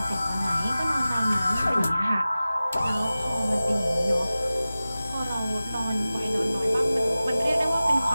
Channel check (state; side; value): inverted; both; correlation -0.96